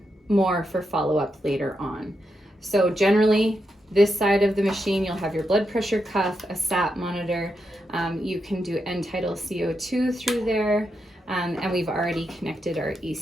more for follow-up later on. So generally, this side of the machine, you'll have your blood pressure cuff, a SAT monitor. You can do end-tidal CO2 through there, and we've already connected our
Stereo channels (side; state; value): both; normal; correlation 0.84